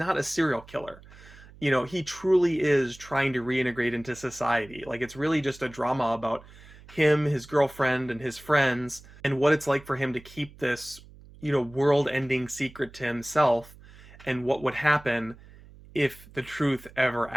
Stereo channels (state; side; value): noise; right; hum, 21 dB below the sound